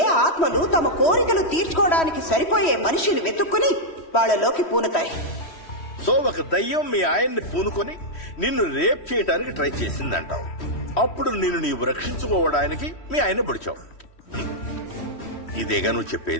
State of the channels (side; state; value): right; late; 3.1 ms